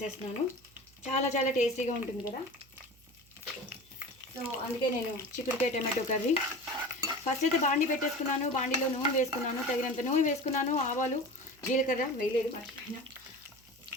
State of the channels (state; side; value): noise; right; hum, 28 dB below the sound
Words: చాలా చాలా టేస్టీగా ఉంటుంది కదా. సో అందుకే నేను చిక్కుడుకాయ టమాటో కర్రీ ఫస్ట్ అయితే బాండీ పెట్టేసుకున్నాను. బాండీలో నూనె వేసుకున్నాను, తగినంత నూనె వేసుకున్నాను. ఆవాలు, జీలకర్ర వేయలేదు, మర్చిపోయినా.